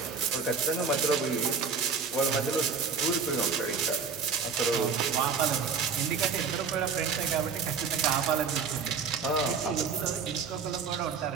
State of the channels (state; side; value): quieter; left; 5.6 dB